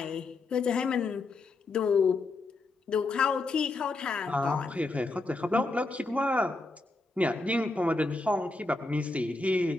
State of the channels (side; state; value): right; quieter; 3.3 dB